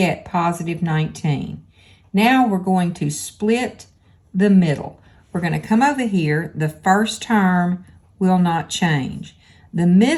positive 19. Now we're going to split the middle. We're going to come over here. The first term will not change. The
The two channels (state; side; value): identical; both; correlation 1.00